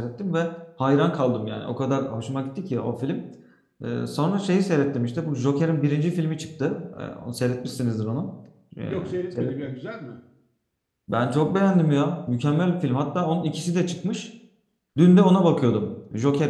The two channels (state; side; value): identical; both; correlation 1.00